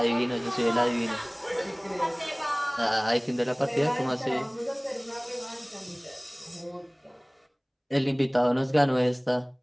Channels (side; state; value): both; identical; correlation 1.00